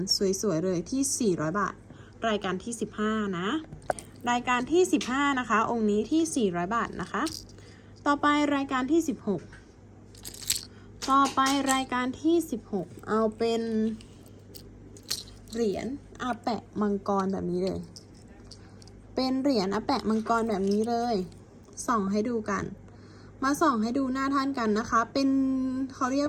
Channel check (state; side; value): identical; both; correlation 1.00